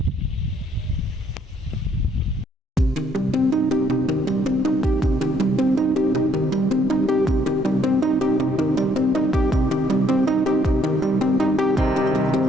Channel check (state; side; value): normal; both; correlation 0.68